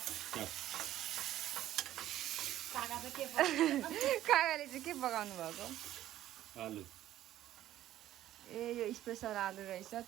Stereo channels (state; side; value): quieter; left; 13.2 dB